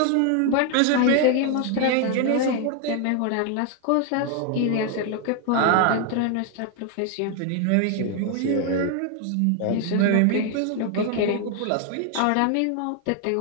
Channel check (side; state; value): both; different; correlation 0.01